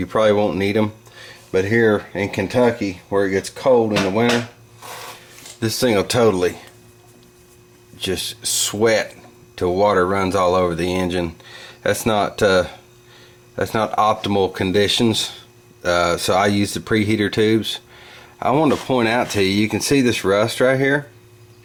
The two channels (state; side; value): identical; both; correlation 1.00